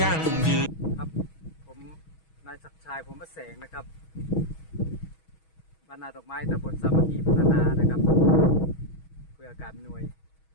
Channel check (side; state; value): right; late; 6.2 ms